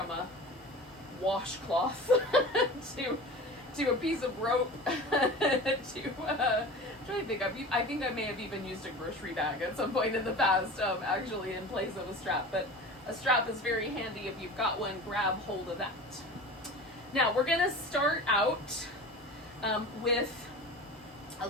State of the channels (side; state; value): both; normal; correlation 0.35